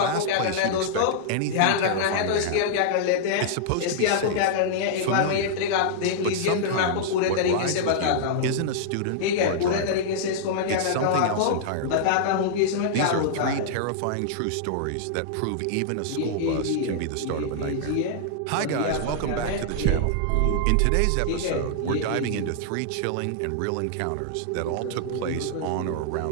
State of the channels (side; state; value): both; different; correlation -0.01